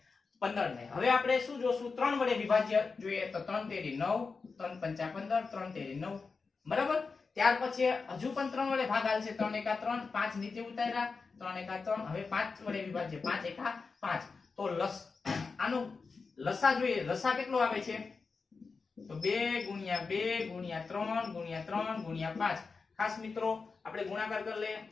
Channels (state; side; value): quieter; right; 4.6 dB